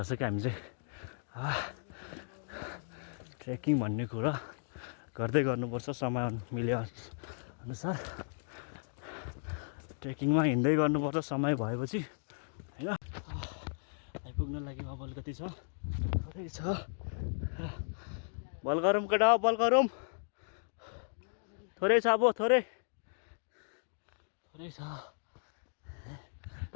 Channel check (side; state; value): right; silent; digital silence